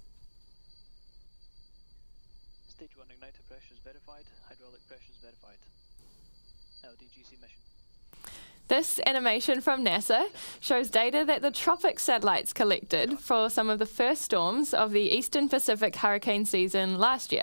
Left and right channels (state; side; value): inverted; both; correlation -1.00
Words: Stage 1 igniter pressures verified, hydraulic pressures verified. LDGC mission. This animation from NASA shows data that the Tropics satellites collected for some of the first storms of the Eastern Pacific hurricane season last